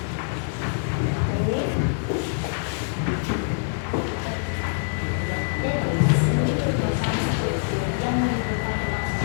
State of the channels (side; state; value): right; silent; digital silence